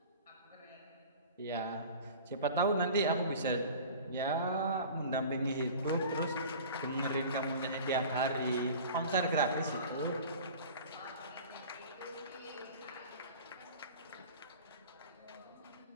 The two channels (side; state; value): both; inverted; correlation -0.40